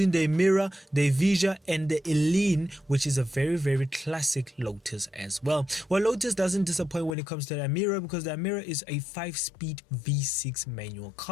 the Emira, the Evija, and the Eline, which is a very classic Lotus as well. Well, Lotus doesn't disappoint when it comes to the Emira, because the Emira is a 5-speed V6 manual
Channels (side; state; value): right; drops out; at 7.2 s